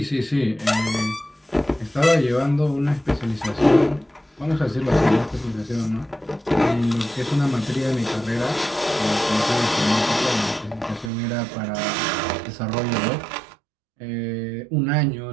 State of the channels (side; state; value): left; drops out; at 11.1 s